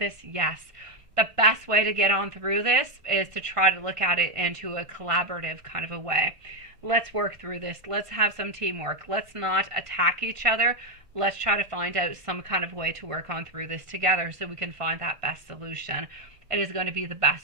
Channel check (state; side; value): late; left; 1.6 ms